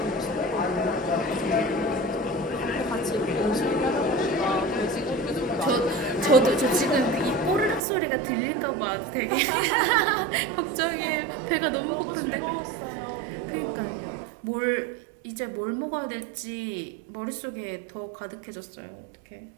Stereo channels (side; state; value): left; drops out; at 7.8 s